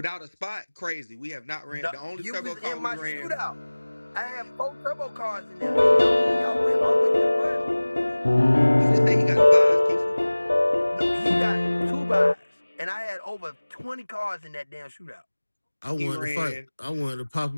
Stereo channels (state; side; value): inverted; both; correlation -1.00